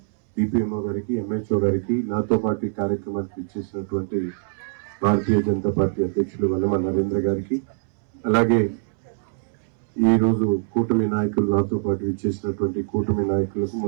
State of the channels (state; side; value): silent; left; 63 dB below the other